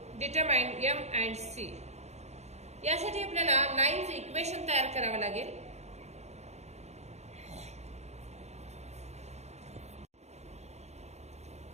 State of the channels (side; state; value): left; late; 0.32 ms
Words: Determine m and c. यासाठी आपल्याला लाईनचे इक्वेशन तयार करावं लागेल.